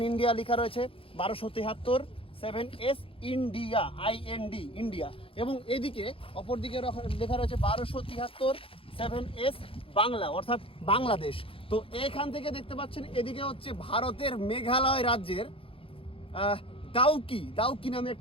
ইন্ডিয়া লেখা রয়েছে 1273 7S ইন্ডিয়া, IND ইন্ডিয়া। এবং এদিকে অপর দিকে লেখা রয়েছে 1273 7S বাংলা, অর্থাৎ বাংলাদেশ। তো এখান থেকে দেখতে পাচ্ছেন এদিকে হচ্ছে ভারতের মেঘালয় রাজ্যের দাউকি নামে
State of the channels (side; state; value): right; late; 0.27 ms